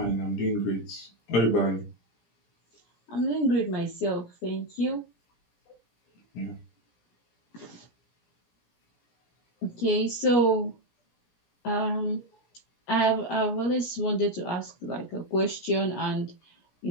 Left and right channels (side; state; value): right; late; 17 ms